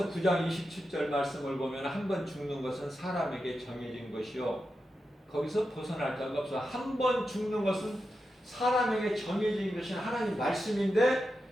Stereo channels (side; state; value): both; normal; correlation 0.89